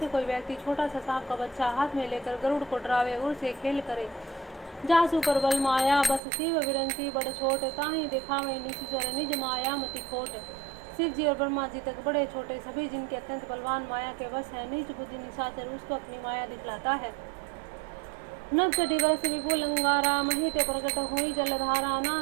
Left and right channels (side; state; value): left; drops out; at 6.2 s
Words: कोई व्यक्ति छोटा सा सांप का बच्चा हाथ में लेकर गरुड़ को डरावे और से खेल करे। जासु पर बल माया बस शिव विरंसी बड़ छोट ताही दिखावे निशिचर निज माया मति खोट। शिव जी और ब्रह्मा जी तक बड़े छोटे सभी जिनके अत्यंत बलवान माया के वश है, निज बुद्धि निशाचर उसको अपनी माया दिखलाता है। नभ चढ़ी वर्ष विपुल अंगारा महिते प्रकट हुई जलधारा